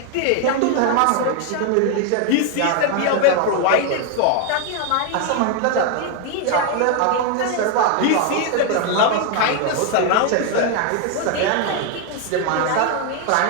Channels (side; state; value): both; different; correlation 0.01